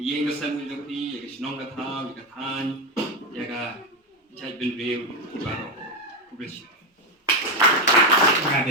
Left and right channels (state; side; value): normal; both; correlation 0.09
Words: kesan jopi, ya ke sinong katha, ya ke than, ya ke cai bin real, baru publish.